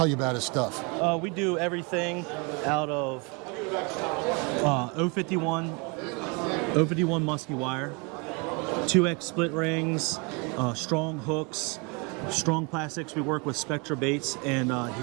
you about his stuff. We do everything out of 051 musky wire, 2X split rings, strong hooks, strong plastics. We work with Spectra baits, and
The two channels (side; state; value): left; quieter; 31.1 dB